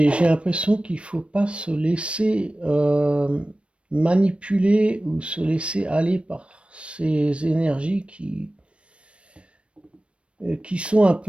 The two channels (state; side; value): late; left; 0.060 ms